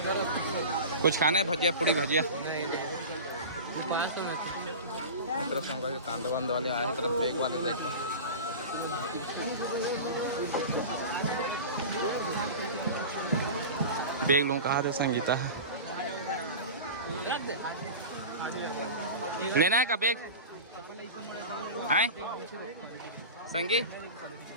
कुछ खाना है? भजिया पूड़ी भजिया तरफ कांदे वांदे वाले आए हैं, तरफ बेग वाले देख लो। बेग लूँ कहा था संगीता लेना है का बेग है संगीत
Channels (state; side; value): inverted; both; correlation -0.31